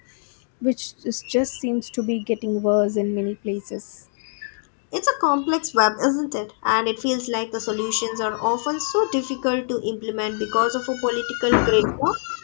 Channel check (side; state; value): right; silent; digital silence